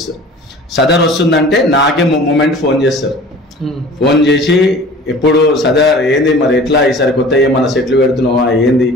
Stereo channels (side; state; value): both; normal; correlation 0.43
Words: సదర్ వస్తుందంటే నాకే మూమెంట్ ఫోన్ చేస్తారు, ఫోన్ చేసి ఎప్పుడు సదర్ ఏంది మరి ఎట్లా ఈసారి కొత్త ఏమన్నా సెట్లు పెడుతున్నావా ఏంది